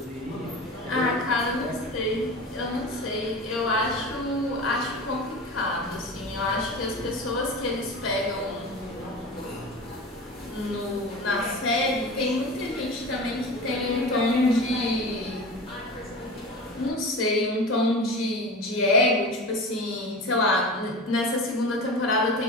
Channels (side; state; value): both; normal; correlation 0.32